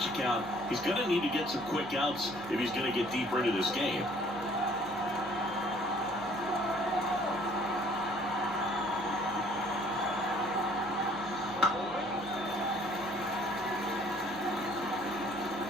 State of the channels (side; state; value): both; normal; correlation 0.58